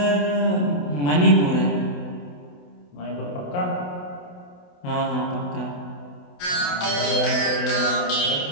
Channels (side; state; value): right; late; 28 ms